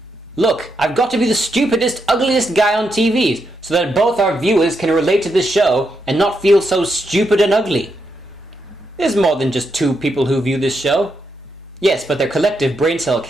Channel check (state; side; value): normal; both; correlation 0.82